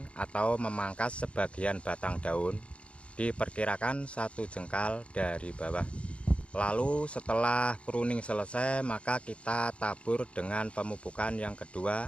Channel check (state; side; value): late; right; 0.060 ms